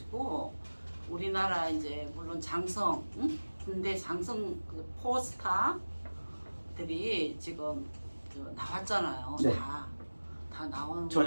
우리나라 이제 물론 장성, 응? 군대 장성 그 포스타들이 지금 나왔잖아요. 네. 다 나온.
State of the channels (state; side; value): inverted; both; correlation -1.00